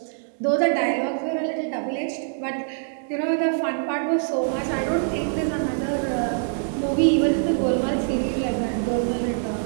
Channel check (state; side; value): silent; left; digital silence